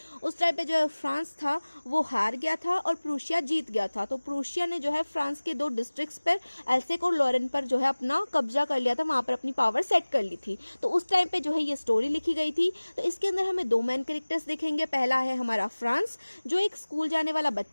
उस टाइम पे जो है फ्रांस था वो हार गया था और प्रूशिया जीत गया था। तो प्रूशिया ने जो है फ्रांस के 2 डिस्ट्रिक्ट्स पर एल्सेक और लॉरेन पर जो है अपना कब्जा कर लिया था, वहाँ पर अपनी पावर सेट कर ली थी। तो उस टाइम पे जो है ये स्टोरी लिखी गई थी। तो इसके अंदर हमें 2 मेन कैरेक्टर्स देखेंगे। पहला है हमारा फ्रांस, जो एक स्कूल जाने वाला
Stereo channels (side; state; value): both; inverted; correlation -1.00